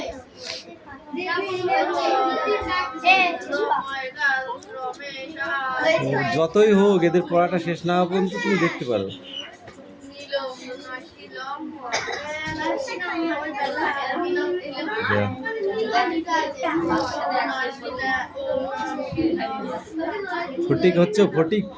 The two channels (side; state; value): both; identical; correlation 1.00